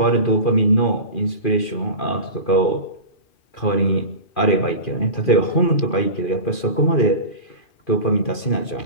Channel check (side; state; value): right; late; 2.4 ms